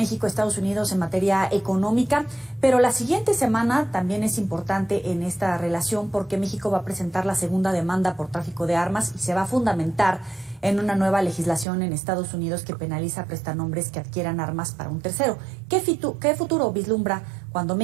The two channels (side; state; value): left; drops out; at 11.7 s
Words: Unidos en materia económica, pero la siguiente semana también es importante en esta relación porque México va a presentar la segunda demanda por tráfico de armas y se va a fundamentar en una nueva legislación en Estados Unidos que penaliza prestanombres que adquieran armas para un tercero. ¿Qué futuro vislumbra cuando